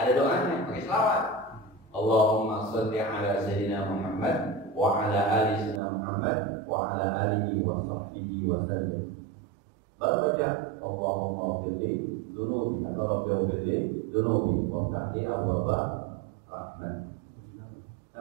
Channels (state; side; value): drops out; left; at 5.8 s